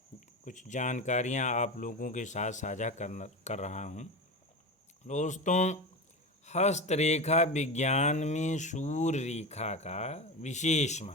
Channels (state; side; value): normal; both; correlation 0.24